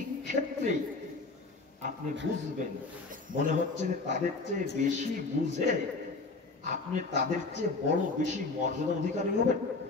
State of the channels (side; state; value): right; quieter; 3.7 dB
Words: ক্ষেত্রে আপনি বুঝবেন, মনে হচ্ছে যে তাদের চেয়ে বেশি বুঝে আপনি তাদের চেয়ে বড় বেশি মর্যাদা অধিকারী হবেন।